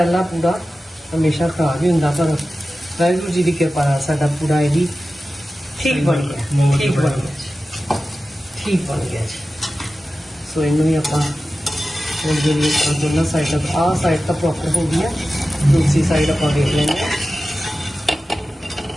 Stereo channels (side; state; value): both; normal; correlation 0.94